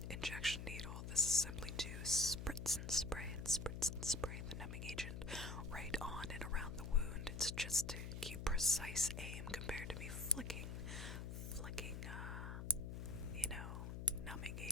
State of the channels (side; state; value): left; noise; hum, 6 dB below the sound